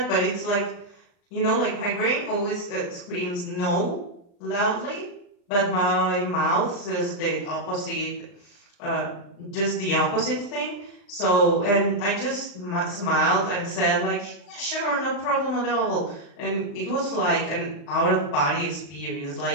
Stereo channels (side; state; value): right; late; 40 ms